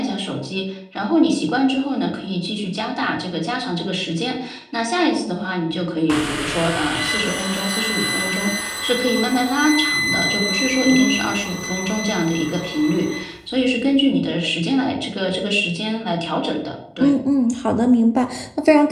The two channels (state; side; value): identical; both; correlation 1.00